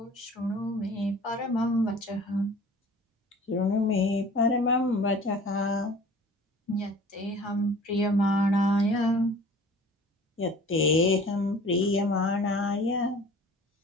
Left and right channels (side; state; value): both; normal; correlation 0.46